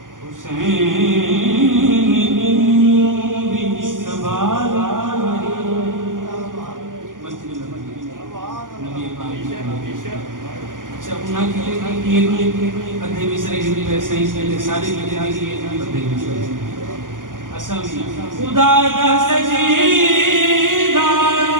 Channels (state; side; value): late; left; 0.89 ms